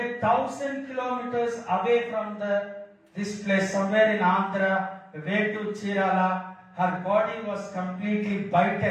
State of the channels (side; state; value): both; identical; correlation 1.00